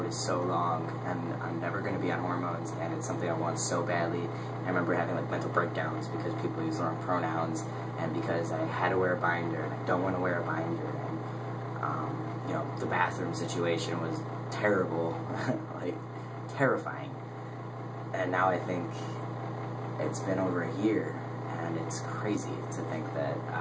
is so long, and I'm never going to be on hormones, and it's something I want so badly. And I remember having, like, mental breakdowns because people use the wrong pronouns, and because I had to wear a binder, and I don't want to wear a binder, and, you know, the bathroom situation was terrible, like, terrifying. And now I think it's been over a year, and it's crazy to think that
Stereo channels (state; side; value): identical; both; correlation 1.00